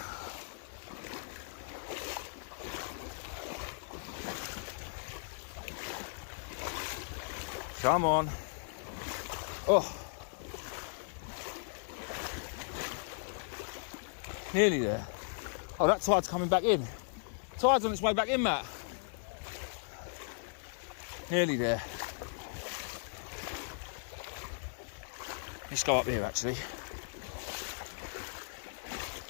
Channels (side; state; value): right; silent; 53 dB below the other